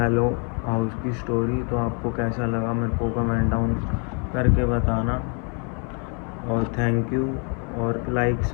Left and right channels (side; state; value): right; quieter; 37.6 dB